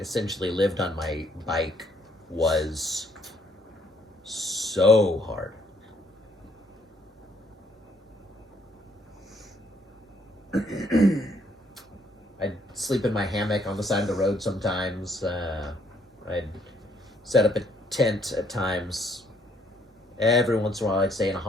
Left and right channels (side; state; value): both; normal; correlation 0.68